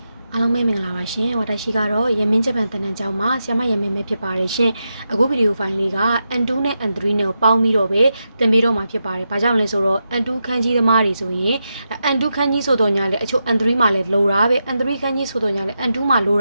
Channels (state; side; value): inverted; both; correlation -0.87